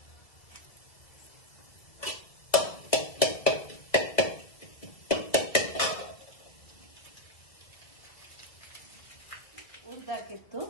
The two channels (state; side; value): late; right; 1.9 ms